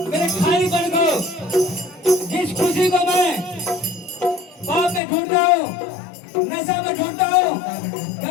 मेरे खालीपन को, जिस खुशी को मैं पाप में ढूंढता हूँ, नशा में ढूंढता हूँ,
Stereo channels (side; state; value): right; drops out; at 5.0 s